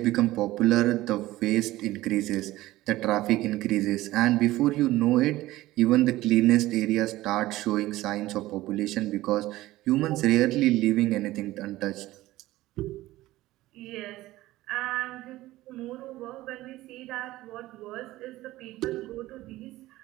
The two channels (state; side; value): quieter; left; 16.9 dB